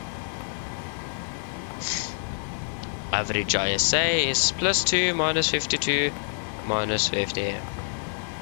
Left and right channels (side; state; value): right; silent; 60 dB below the other